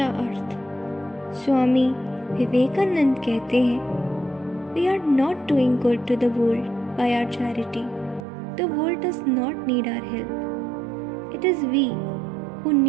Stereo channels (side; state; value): left; drops out; at 8.2 s